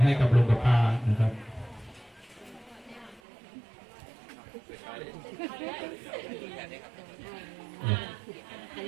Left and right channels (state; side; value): drops out; left; at 3.2 s